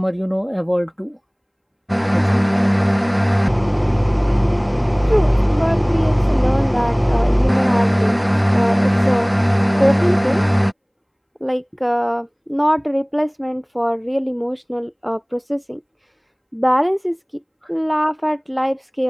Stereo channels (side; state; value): both; identical; correlation 1.00